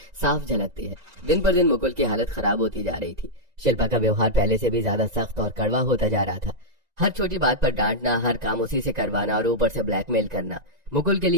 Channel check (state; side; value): late; left; 1.9 ms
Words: साफ झलकती है। दिन पर दिन मुकुल की हालत खराब होती जा रही थी। शिल्पा का व्यवहार पहले से भी ज्यादा सख्त और कड़वा होता जा रहा था। हर छोटी बात पर डांटना, हर काम उसी से करवाना और ऊपर से ब्लैकमेल करना। मुकुल के